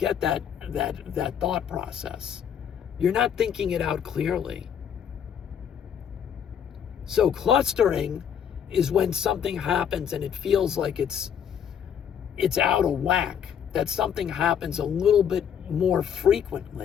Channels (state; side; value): quieter; right; 8.4 dB